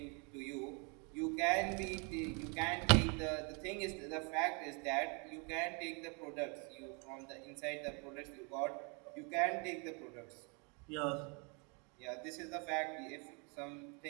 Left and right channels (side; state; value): left; quieter; 34.2 dB